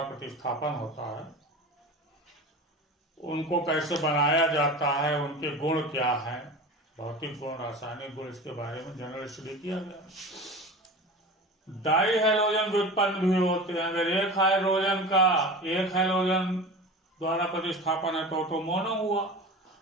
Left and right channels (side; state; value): both; normal; correlation 0.33